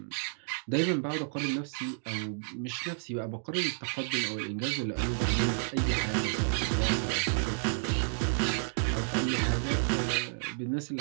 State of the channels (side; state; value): left; silent; digital silence